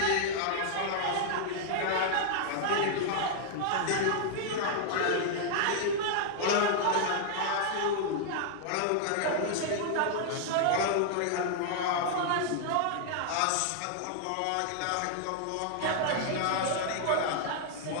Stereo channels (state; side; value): different; both; correlation -0.01